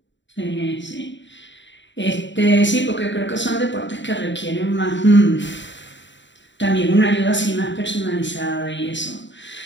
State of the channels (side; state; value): right; late; 0.53 ms